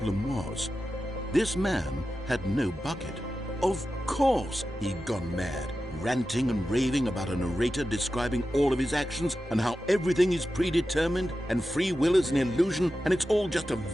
was. This man had no bucket. Of course he'd gone mad, ranting and raving about a narrator describing all of his actions and how everything is predetermined and free will is an illusion and it's all just a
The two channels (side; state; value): both; normal; correlation 0.92